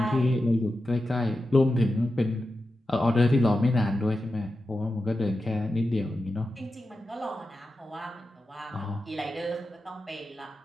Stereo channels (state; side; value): normal; both; correlation 0.91